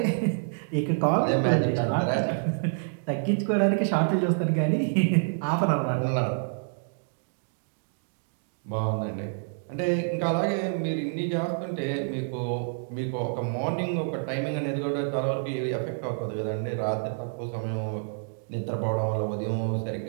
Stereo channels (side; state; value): left; silent; digital silence